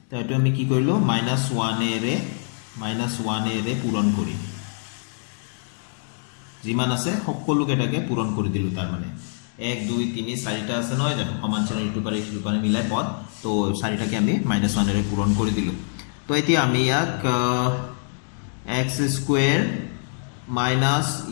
তো এটো আমি কি কৰিলো -1 এৰে পূৰণ কৰি যিমান আছে সকলো কেটাকে পূৰণ কৰি দিলো তাৰ মানে 1 2 3 4টা আছে নহয় জানো সমান চিহ্ন ইটো পাৰে মিলাই পদ তো 4টাকে আমি -1 এৰে পূৰণ কৰি দিলো তো এতিয়া আমি ইয়াক x স্কয়াৰ মাইনাস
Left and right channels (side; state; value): right; silent; digital silence